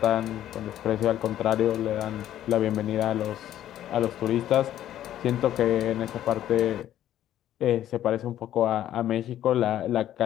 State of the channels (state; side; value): quieter; right; 12.0 dB